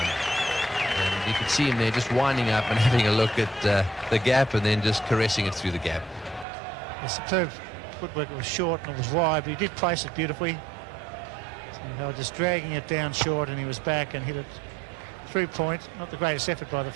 And you could see him there just winding up and having a look at the gap and then just caressing it through the gap. The superb footwork. It was short and it was wide, but he did place it beautifully. So they were just dragging it down short, and he was back and hit it through point. Not the greatest effort by the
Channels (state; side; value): drops out; left; at 6.5 s